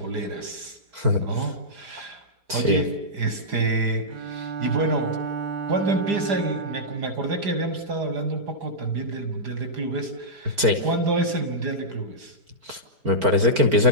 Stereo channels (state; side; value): late; left; 4.4 ms